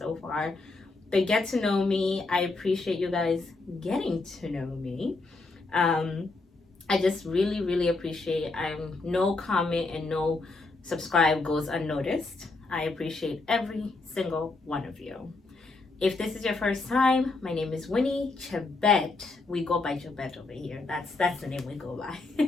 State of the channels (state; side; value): quieter; right; 3.5 dB